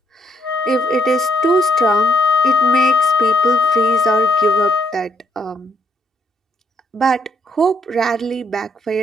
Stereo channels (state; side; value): normal; both; correlation 0.72